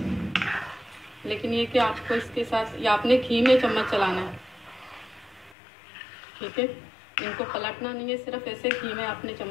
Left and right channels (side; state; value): right; drops out; at 5.6 s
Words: लेकिन ये कि आपको इसके साथ या आपने घी में चम्मच चलाना है, ठीक है। इनको पलटना नहीं है, सिर्फ ऐसे घी में आपने